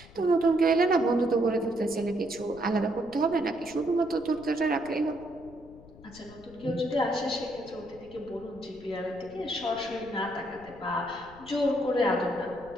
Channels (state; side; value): noise; left; rumble, 21 dB below the sound